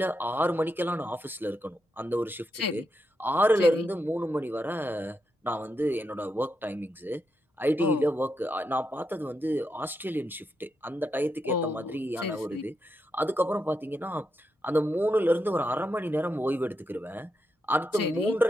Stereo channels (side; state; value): both; normal; correlation 0.84